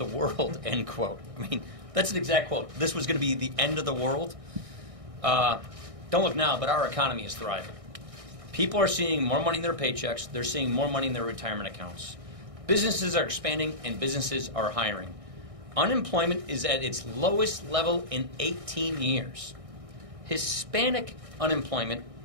world, end quote. I mean, that's an exact quote. This was going to be the end of the world. Don't look now, but our economy is thriving. People are seeing more money in their paychecks. They're seeing more money in their retirement accounts. Businesses are expanding, and businesses are hiring. Unemployment is at its lowest level in 18 years. Hispanic unemployment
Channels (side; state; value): left; late; 1.6 ms